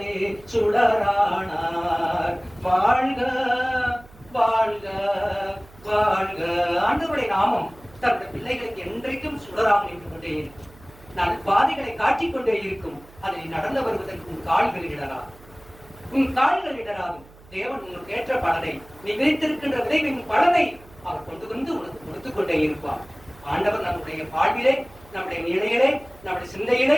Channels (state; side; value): noise; right; hum, 23 dB below the sound